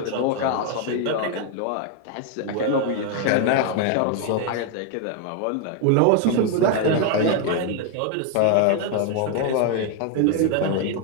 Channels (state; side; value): different; both; correlation 0.01